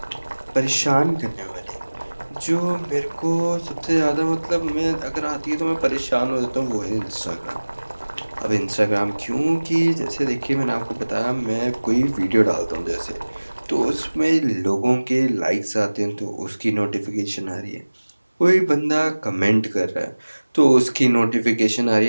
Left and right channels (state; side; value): inverted; both; correlation -1.00